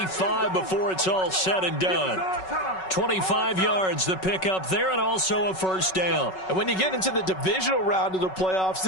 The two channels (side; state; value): right; late; 5.4 ms